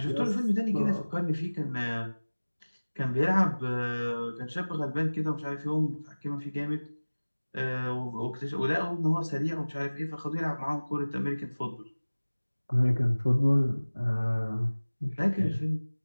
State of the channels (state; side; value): inverted; both; correlation -1.00